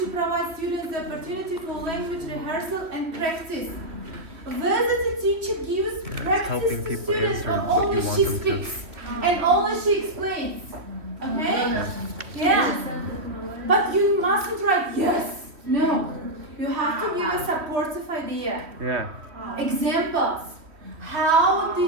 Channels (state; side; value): late; left; 3.1 ms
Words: provide students the opportunity for language rehearsal and practice? Whether the teacher gives practice helping to people students answer or what you only want she them to. speaks and only she explains. Okay? Yeah. But you mustn't write yes. No. You have to give a supportive idea. Yeah. Examples. How